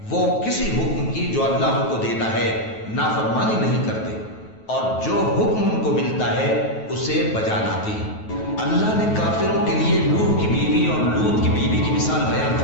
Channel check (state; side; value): late; right; 9.3 ms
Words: وہ کسی حکم کی جو اللہ ان کو دیتا ہے نافرمانی نہیں کرتے، اور جو حکم ان کو ملتا ہے اسے بجا لاتے ہیں۔ اللہ نے کافروں کے لیے نوح کی بیوی اور لوط کی بیوی کی مثال بیان